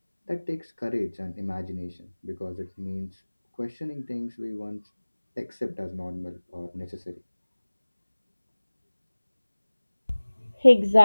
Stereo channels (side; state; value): both; inverted; correlation -1.00